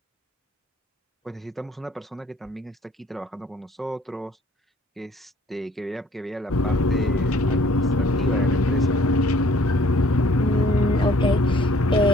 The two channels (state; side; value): normal; both; correlation 0.58